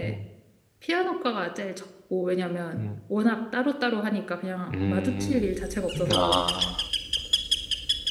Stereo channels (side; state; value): both; identical; correlation 1.00